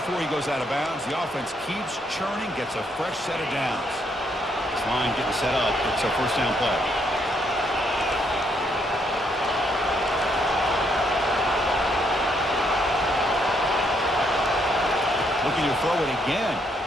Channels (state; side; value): normal; both; correlation 0.73